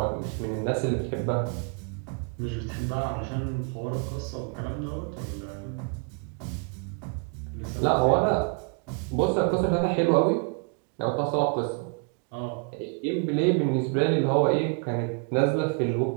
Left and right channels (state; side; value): quieter; left; 35.5 dB